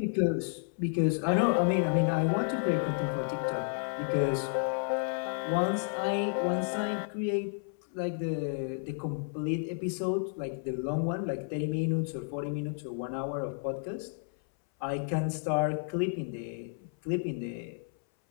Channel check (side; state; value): right; silent; 57 dB below the other